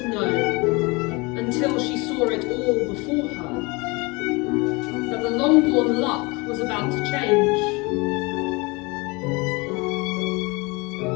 known, until she saw it all before her, that the Longbourn luck was about to change.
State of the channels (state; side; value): quieter; right; 26.4 dB